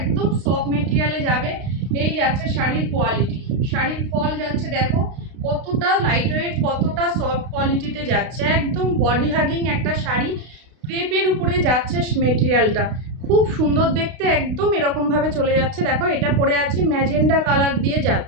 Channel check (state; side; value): late; left; 32 ms